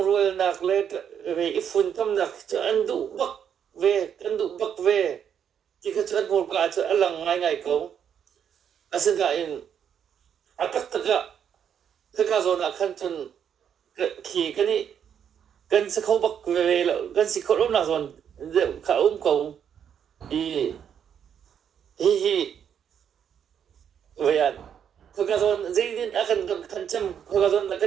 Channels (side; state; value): left; quieter; 8.4 dB